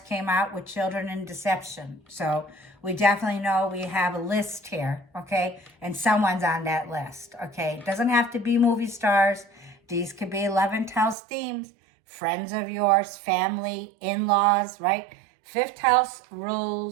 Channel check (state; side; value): drops out; left; at 11.2 s